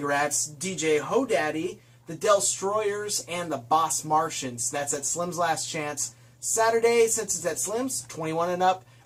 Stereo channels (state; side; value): identical; both; correlation 1.00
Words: DJ Hodaddy, the Destroyers, and the Boss Martians. That's at Slim's Last Chance. Saturday, since it's at Slim's, 21 and up,